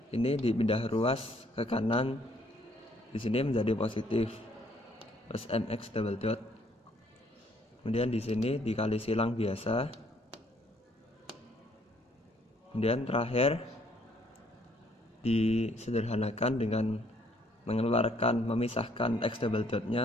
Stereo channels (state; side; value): normal; both; correlation 0.65